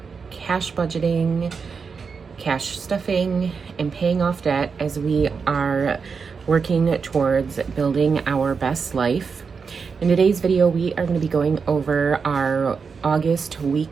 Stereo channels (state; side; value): quieter; left; 5.5 dB